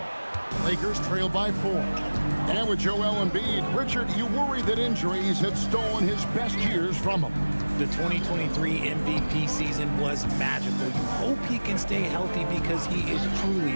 Lakers trail by 4. And with Joel Embiid, Richard, you worry that injuries have stolen his best years from him. The 2023 MVP season was magical. You hope he can stay healthy because he is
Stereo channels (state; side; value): inverted; both; correlation -1.00